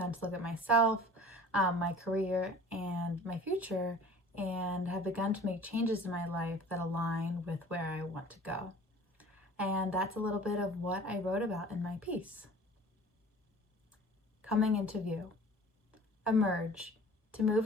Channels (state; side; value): normal; both; correlation 0.45